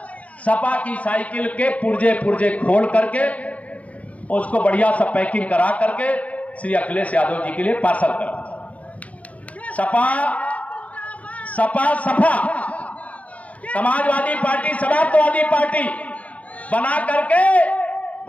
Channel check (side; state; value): right; late; 0.068 ms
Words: सपा की साइकिल के पुर्जे पुर्जे खोल करके उसको बढ़िया सा पैकिंग करा करके श्री अखिलेश यादव जी के लिए पार्सल कर। सपा सपा समाजवादी पार्टी, समाजवादी पार्टी बना करके